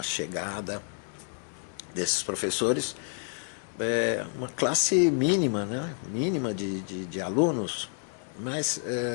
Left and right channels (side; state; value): right; silent; 58 dB below the other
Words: chegada desses professores, uma classe mínima, né? Mínima de alunos, mas